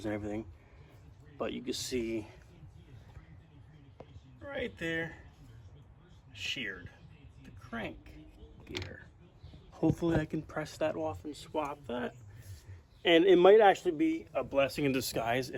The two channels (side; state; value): both; identical; correlation 1.00